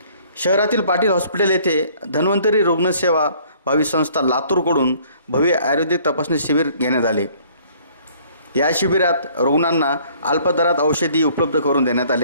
शहरातील पाटील हॉस्पिटल येथे धन्वंतरी रुग्णसेवा भावी संस्था लातूरकडून भव्य आयुर्वेदिक तपासणी शिबिर घेण्यात आले। या शिबिरात रुग्णांना अल्प दरात औषधी उपलब्ध करून देण्यात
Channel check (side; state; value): both; inverted; correlation -0.58